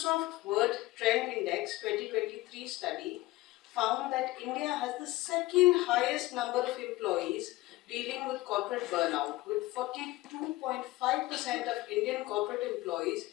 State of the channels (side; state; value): right; quieter; 18.7 dB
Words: Word Trend Index 2023 study found that India has the second highest number of employees dealing with corporate burnout, with 42.5% of Indian corporate employees